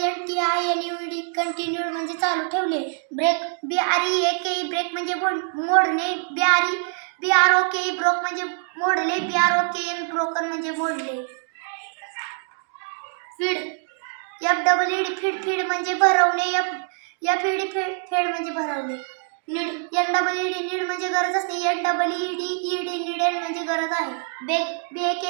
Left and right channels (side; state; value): left; silent; 55 dB below the other